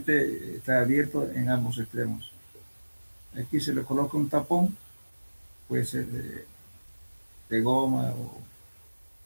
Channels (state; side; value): inverted; both; correlation -1.00